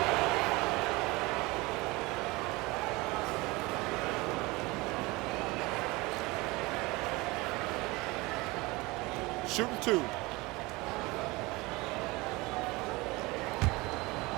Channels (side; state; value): left; quieter; 22.9 dB